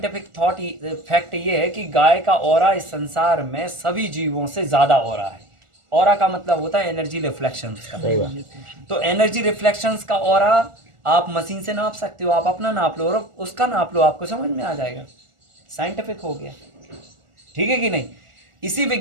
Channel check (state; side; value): late; left; 1.4 ms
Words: फैक्ट ये है कि गाय का ऑरा इस संसार में सभी जीवों से ज़्यादा ऑरा है। ऑरा का मतलब होता है एनर्जी रिफ्लेक्शंस का। तो एनर्जी रिफ्लेक्शंस का ऑरा आप मशीन से नाप सकते हो, आप अपना नाप लो और उसका नाप लो, आपको समझ में आ जाएगा। साइंटिफिक हो गया, ठीक है कि नहीं। इसी